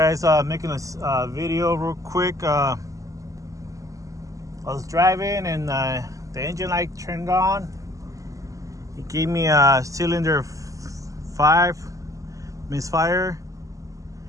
making a video real quick. I was driving and the engine light turned on. It gave me a cylinder 5 misfire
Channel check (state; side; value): late; left; 0.16 ms